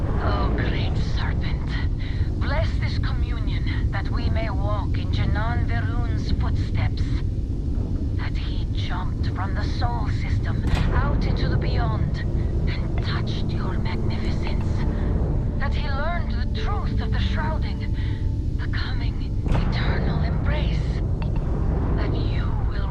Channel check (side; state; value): both; identical; correlation 1.00